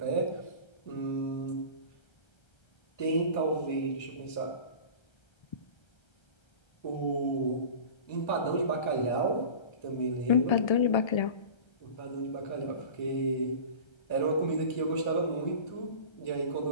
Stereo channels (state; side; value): late; right; 1.3 ms